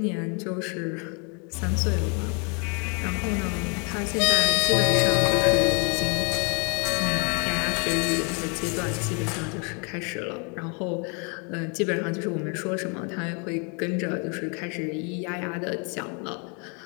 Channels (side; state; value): right; quieter; 35.5 dB